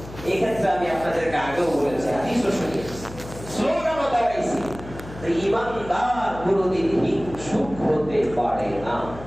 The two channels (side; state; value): left; noise; hum, 15 dB below the sound